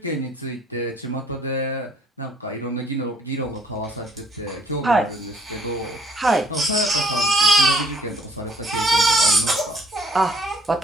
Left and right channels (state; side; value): normal; both; correlation 0.61